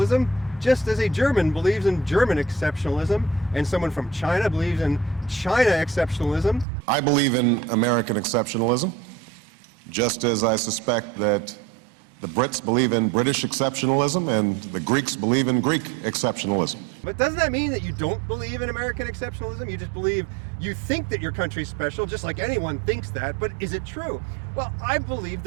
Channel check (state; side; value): drops out; left; at 6.7 s